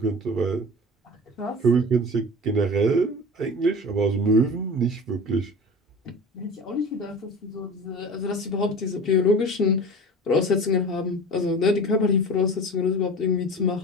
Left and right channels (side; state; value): both; normal; correlation 0.35